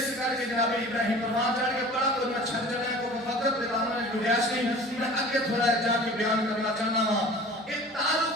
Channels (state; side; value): normal; both; correlation 0.42